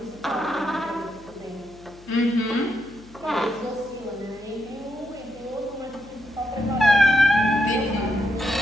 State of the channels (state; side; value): noise; left; hum, 23 dB below the sound